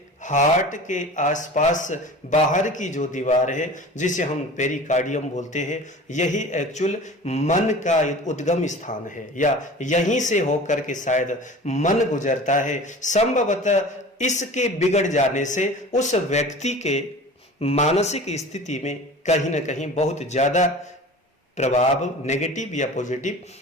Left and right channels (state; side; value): normal; both; correlation 0.39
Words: हार्ट के आसपास बाहर की जो दीवार है जिसे हम पेरिकार्डियम बोलते हैं, यही एक्चुअल मन का उद्गम स्थान है, या यहीं से होकर के शायद मन गुजरता है। संभवतः इसके बिगड़ जाने से उस व्यक्ति के मानसिक स्थिति में कहीं ना कहीं बहुत ज्यादा प्रभाव नेगेटिव या पॉजिटिव